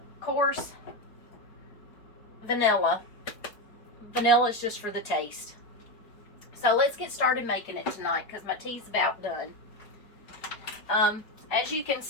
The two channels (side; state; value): right; late; 4.8 ms